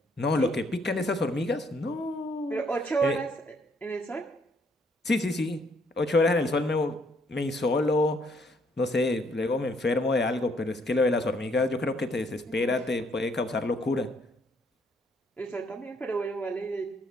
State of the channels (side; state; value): both; normal; correlation 0.68